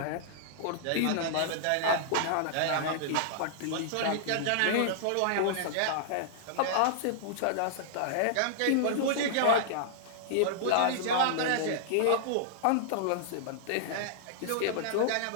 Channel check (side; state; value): both; different; correlation -0.01